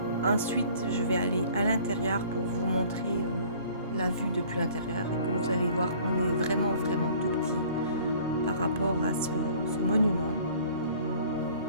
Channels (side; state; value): both; inverted; correlation -0.52